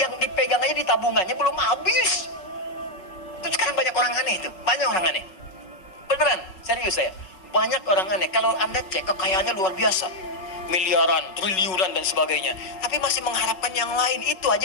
yang dipegang aja di tabungannya belum habis. Itu sekarang banyak orang aneh itu, banyak orang aneh. Beneran, serius saya. Banyak orang aneh. Kalau Anda cek kekayaannya luar biasa, miliaran, triliunan dan sebagainya, tapi masih mengharapkan yang lain, itu aja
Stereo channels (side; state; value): right; late; 5.4 ms